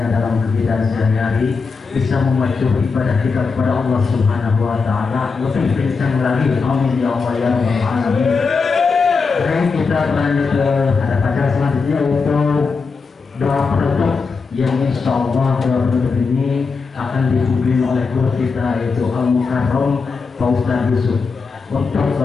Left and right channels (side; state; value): right; quieter; 4.8 dB